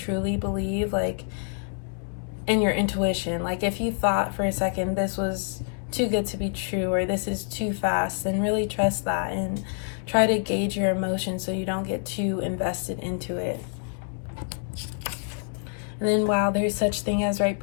believe, like, and your intuition. Like if you thought for a second this was too good to be true or this is too fast, then really trust that and try to gauge your emotions so you don't get too invested into it. And then, wow, there's such thing as right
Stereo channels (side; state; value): right; silent; 58 dB below the other